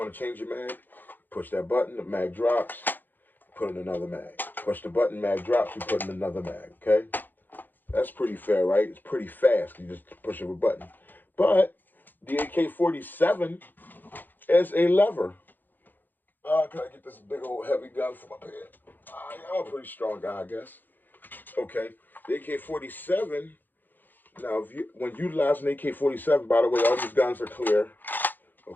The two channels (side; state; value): right; late; 0.089 ms